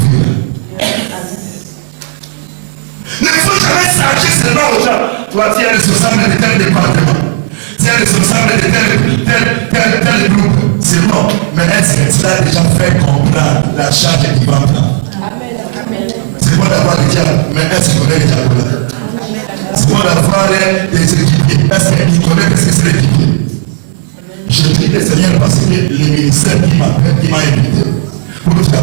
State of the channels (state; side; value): silent; left; digital silence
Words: Ne faut jamais s'arracher seulement aux gens. Toi, tu es responsable de tel département. Tu es responsable de tel groupe. C'est bon. Mais est-ce que tu as déjà fait comprendre la charge qui va prendre? C'est bon d'avoir des diables, mais est-ce qu'il connaît les diables là? C'est bon d'avoir des équipiers. Est-ce qu'il connaît ce que c'est l'équipier? Je prie le Seigneur parce que le ministère qui m'appelle, qui m'a invité pour